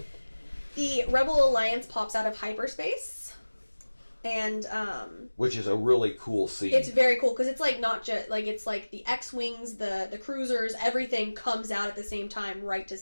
The Rebel Alliance pops out of hyperspace, and which is a really cool scene. It's very cool because it's like not just like it's like the X-wings, the cruisers, everything comes out at the same time, right to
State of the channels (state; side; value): inverted; both; correlation -1.00